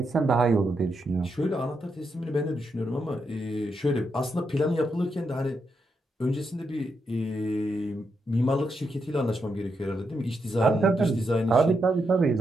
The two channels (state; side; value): normal; both; correlation 0.82